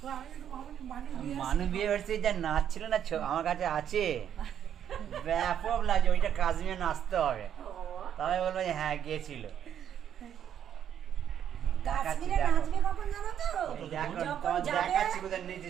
মানে বিয়ে মানু বিয়ে বাড়িতে যা নাচ ছিল না আমার কাছে আছে ব্যাপক লাগে ওইটা কাশ্মীরে নাচতে হবে তবে বলবো যে হ্যাঁ গিয়েছিল কাশ্মীরে নাচবে কখন জানো তো দেখো যখন তোমার যাবে, দেখাচ্ছি কোথায় নিচে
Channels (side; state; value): left; quieter; 9.4 dB